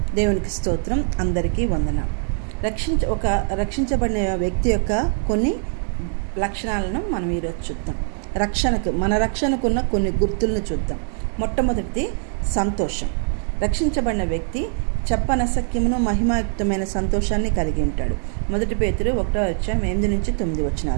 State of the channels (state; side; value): silent; left; 56 dB below the other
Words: దేవునికి స్తోత్రం. అందరికీ వందనం. రక్షించబడిన వ్యక్తి యొక్క కొన్ని లక్షణాలను మనం ఈరోజు చూద్దాం. మన రక్షణకున్న కొన్ని గుర్తులను చూద్దాం. మొట్టమొదటిది సంతోషం. రక్షించబడిన వ్యక్తి చెప్పనసక్యమును మహిమాయుక్తమైన సంతోషాన్ని కలిగి ఉంటాడు. 1 పేతురు